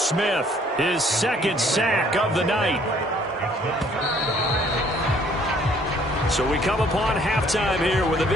his 2nd sack of the night. So we come upon halftime here with the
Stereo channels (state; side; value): normal; both; correlation 0.61